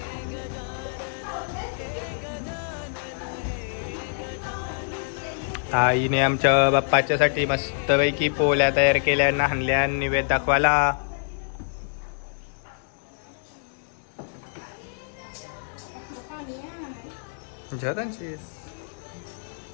आईने आमच्या बाप्पाच्यासाठी मस्तपैकी पोल्या तयार केल्या नाहनल्या निवेद दाखवायला. जगांची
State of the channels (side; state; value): right; silent; digital silence